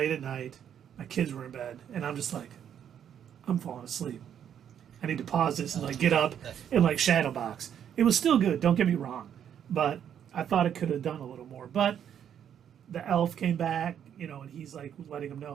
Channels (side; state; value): left; quieter; 9.1 dB